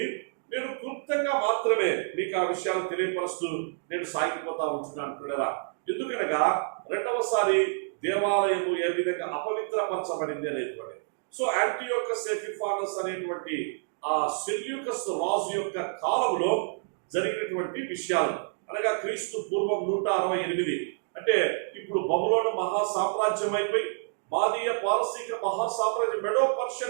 నేను క్లుప్తంగా మాత్రమే మీకు ఆ విషయాలు తెలియపరుస్తూ నేను సాగిపోతా ఉంటున్నాను పిల్లరా. ఎందుకనగా రెండవసారి దేవాలయము ఏ విధంగా అపవిత్రపరచబడింది అనేటువంటి. సో యాంటియోకస్ ఎపిఫానస్ అనేటువంటి ఆ సెల్యూకస్ రాజు యొక్క కాలంలో జరిగినటువంటి విషయాలు, అనగా క్రీస్తు పూర్వం 168, అంటే ఇప్పుడు బబులోను మహాసామ్రాజ్యం అయిపోయి మాదీయ పారసీక మహాసామ్రాజ్యం మెడో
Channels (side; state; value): left; silent; digital silence